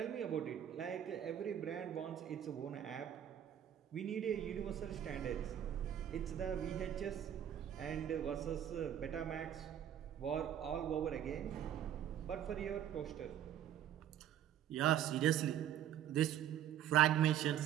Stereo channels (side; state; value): left; quieter; 10.5 dB